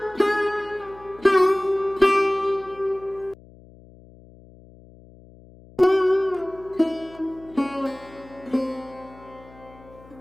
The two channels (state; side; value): noise; left; hum, 23 dB below the sound